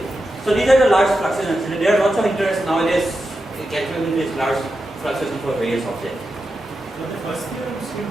So these are the large fluctuations. There are lots of interest nowadays in calculating these large fluctuations for various objects. So the first theorem still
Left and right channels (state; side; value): normal; both; correlation 0.89